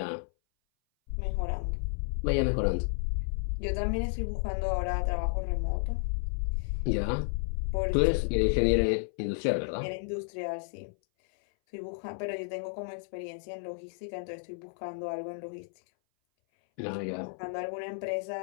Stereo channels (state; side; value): silent; right; 57 dB below the other